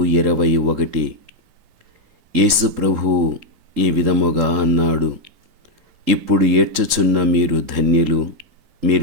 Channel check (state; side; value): late; left; 3.8 ms